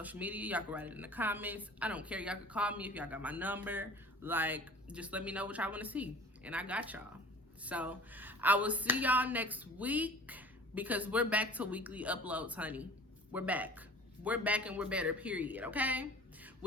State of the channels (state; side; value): normal; both; correlation 0.44